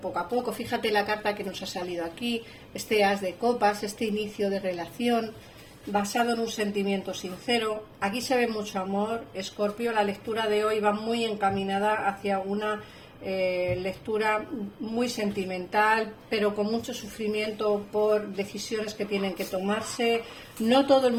a poco. Fíjate la carta que nos ha salido aquí, este as de copas, este inicio de relación basado en un sentimiento sincero. Aquí se ve mucho amor, Escorpio. La lectura de hoy va muy encaminada hacia una lectura muy sentimental, pero con mucho sufrimiento por decisiones que tienen que tomarse. No todo el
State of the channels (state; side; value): identical; both; correlation 1.00